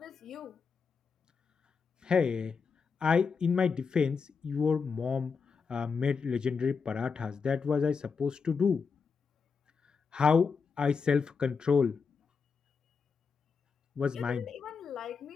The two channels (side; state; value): right; quieter; 5.5 dB